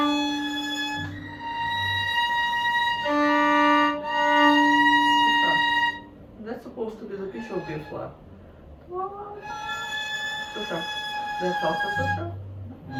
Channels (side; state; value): both; identical; correlation 1.00